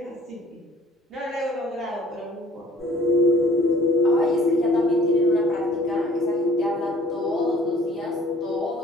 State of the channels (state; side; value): normal; both; correlation 0.54